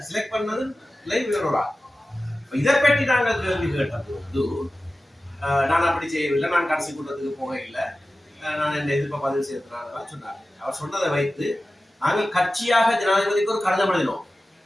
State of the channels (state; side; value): normal; both; correlation 0.95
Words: செலக்ட் பண்ணது வேறொரு. இதை பற்றி நாங்கள் கேள்வி கேட்ட போது நான் அப்படி செய்யவில்லை, நான் கடைசி கூட்டத்துக்கு போக இல்லை, நான் இந்த எதிர்ப்பை பதிவு செய்யறதுனால சொன்னார். அவர் சொன்னதை வைத்து நாங்கள் கட்சியாக ஜனாதிபதிக்கு ஒரு கடிதம் எழுதினோம்.